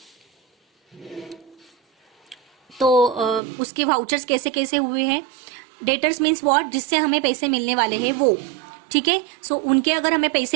तो उसके वाउचर्स कैसे कैसे हुए हैं। डेटर्स मीन्स व्हाट, जिससे हमें पैसे मिलने वाले हैं वो, ठीक है। सो उनके अगर हमें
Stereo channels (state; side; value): drops out; left; at 3.4 s